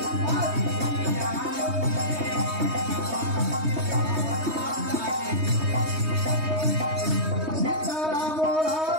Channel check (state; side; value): late; left; 3.2 ms